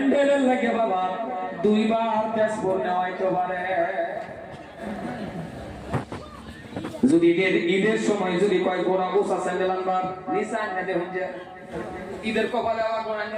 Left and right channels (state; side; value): identical; both; correlation 1.00